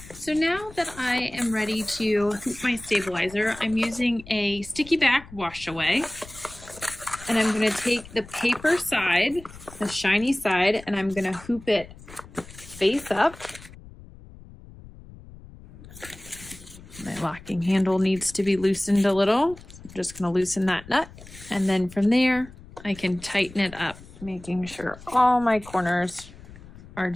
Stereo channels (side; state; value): left; noise; rumble, 18 dB below the sound